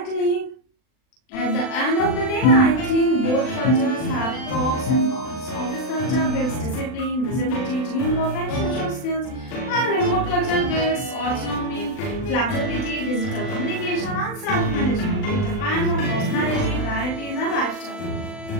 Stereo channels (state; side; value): late; right; 39 ms